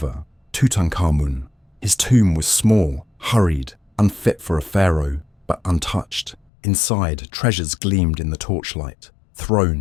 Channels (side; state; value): right; drops out; at 6.4 s